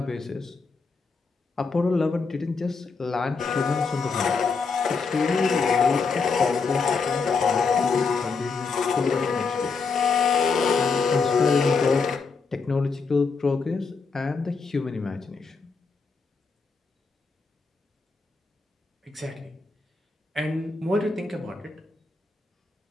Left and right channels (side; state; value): right; quieter; 4.7 dB